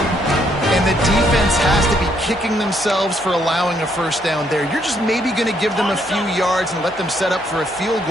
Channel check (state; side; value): normal; both; correlation 0.71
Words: And the defense has to be kicking themselves for allowing a first down there. You're just maybe going to give them a few yards and let them set up for a field